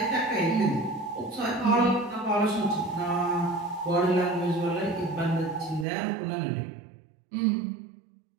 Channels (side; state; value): left; drops out; at 5.9 s